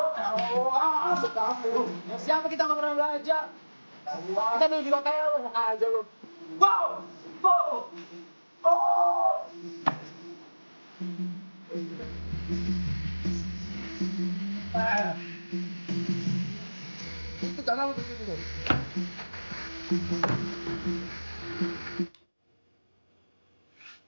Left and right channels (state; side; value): inverted; both; correlation -1.00